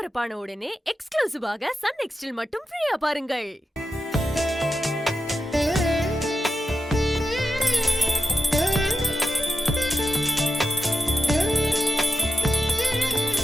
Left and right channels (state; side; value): normal; both; correlation 0.90